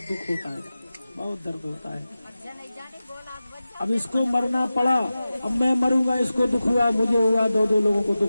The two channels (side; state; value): both; inverted; correlation -0.95